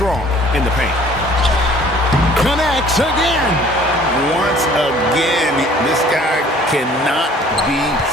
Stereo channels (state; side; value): normal; both; correlation 0.54